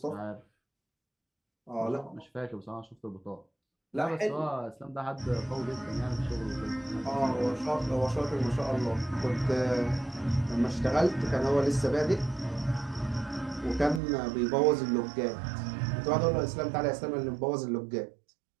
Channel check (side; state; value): left; drops out; at 14.0 s